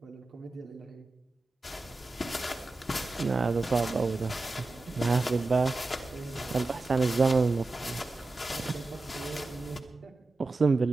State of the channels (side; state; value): left; quieter; 3.2 dB